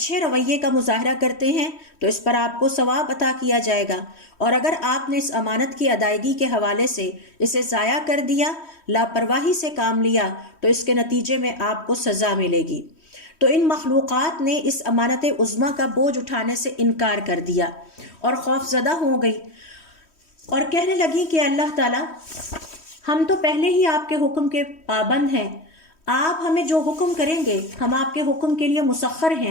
رویے کا مظاہرہ کرتے ہیں تو اس پر آپ کو ثواب عطا کیا جائے گا، اور اگر آپ نے اس امانت کی ادائیگی کے حوالے سے اسے ضائع کر دیا، لاپرواہی سے کام لیا، تو اس کے نتیجے میں آپ کو سزا ملے گی۔ تو ان مخلوقات نے اس امانت عظمیٰ کا بوجھ اٹھانے سے انکار کر دیا اور خوف زدہ ہو گئی اور کہنے لگی کہ اللہ تعالیٰ، ہم تو پہلے ہی آپ کے حکم کے پابند ہیں، آپ ہمیں جو حکم کریں گے ہم آپ کے حکم کے لیے مسخر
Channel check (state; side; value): late; right; 3.1 ms